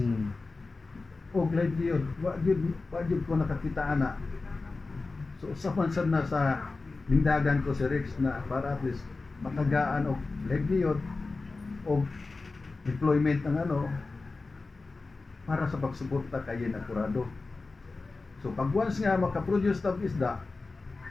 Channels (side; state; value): right; quieter; 3.7 dB